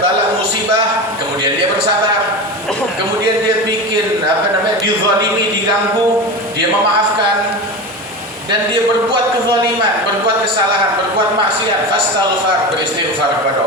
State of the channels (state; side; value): normal; both; correlation 0.25